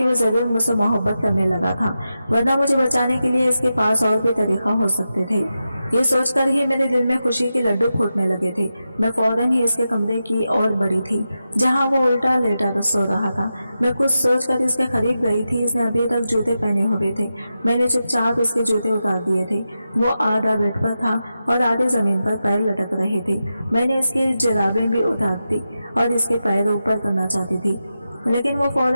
वो जरूर मुझसे मोहब्बत करने लगा था, वरना मुझे बचाने के लिए इसके पास और भी तरीका हो सकते थे। ये सोचकर ही मेरे दिल में खुशी के लड्डू फूटने लगे थे। मैं फौरन ही इसके कमरे की ओर बढ़ी थी, जहां वो उल्टा लेटा सो रहा था। मैं कुछ सोचकर इसके करीब गई थी। इसने अभी तक जूते पहने हुए थे। मैंने चुपचाप इसके जूते उतार दिए थे। वो आधा बेड पर था और आधे जमीन पर पैर लटक रहे थे। मैंने इसकी जुराबें भी उतार दी और इसके पैर ऊपर करना चाहती थी, लेकिन वो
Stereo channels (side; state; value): both; inverted; correlation -0.90